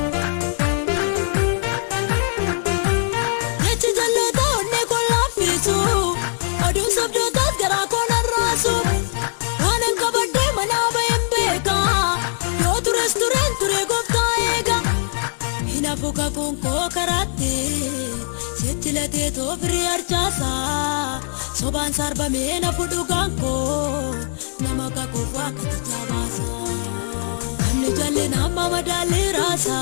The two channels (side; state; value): right; silent; 63 dB below the other